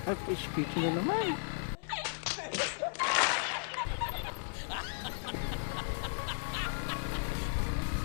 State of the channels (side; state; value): right; silent; 54 dB below the other